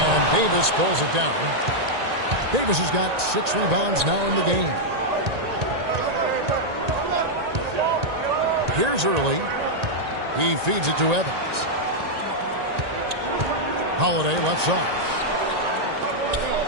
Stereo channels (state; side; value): late; left; 1.8 ms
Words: Davis pulls it down. Davis has got 6 rebounds now in the game. Here's Early. He feeds it to Evans. Holiday left side.